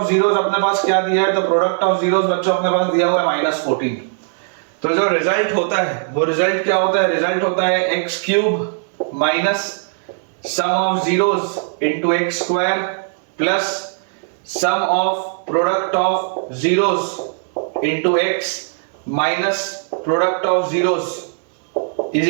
जीरोस अपने पास क्या दिया है. तो प्रोडक्ट ऑफ जीरोस बच्चों अपने पास दिया हुआ है -14. तो जो रिजल्ट होता है वो रिजल्ट क्या होता है. रिजल्ट होता है x³ minus sum of zeros into x² plus sum of product of zeros into x minus product of zeros is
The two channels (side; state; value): left; silent; digital silence